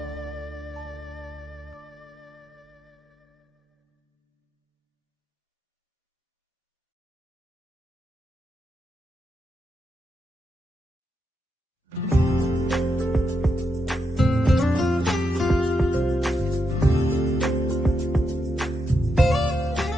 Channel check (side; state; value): both; normal; correlation 0.83